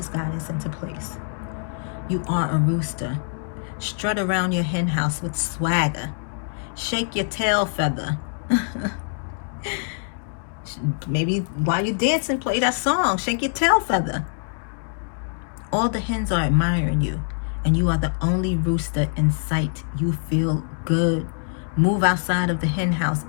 guidance into place. You are a rooster. Strut around your hen house with swagger. Shake your tail feather. Maybe while you're dancing, play that song. Shake your tail feather. All the hens are admiring you, and you are the only rooster in sight. You feel good. Move outside of the hen house.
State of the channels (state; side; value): silent; right; digital silence